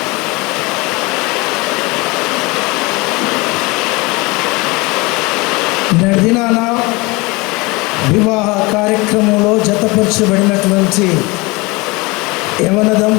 నడిదినాన వివాహ కార్యక్రమంలో జతపరచబడినటువంటి యవన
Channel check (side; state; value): right; quieter; 24.8 dB